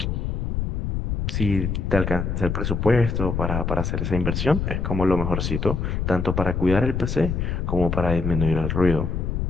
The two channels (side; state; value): left; noise; rumble, 1 dB below the sound